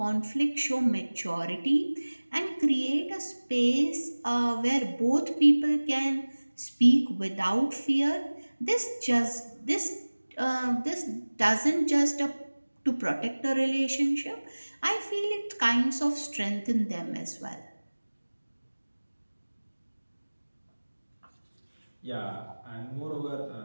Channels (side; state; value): both; inverted; correlation -1.00